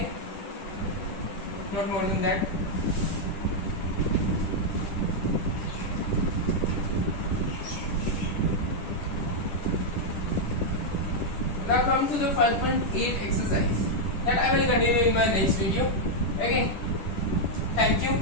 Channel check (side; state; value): right; late; 10 ms